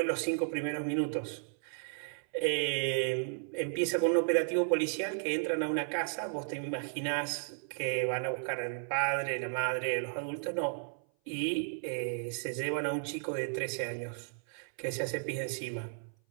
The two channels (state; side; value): silent; left; 55 dB below the other